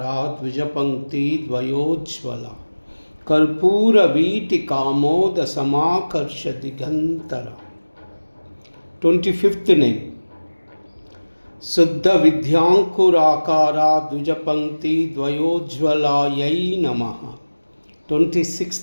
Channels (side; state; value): both; inverted; correlation -1.00